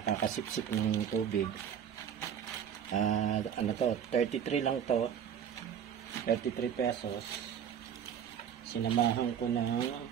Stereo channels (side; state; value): left; quieter; 8.6 dB